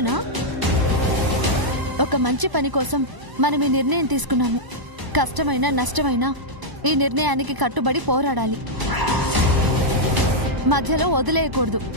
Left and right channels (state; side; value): late; left; 1.0 ms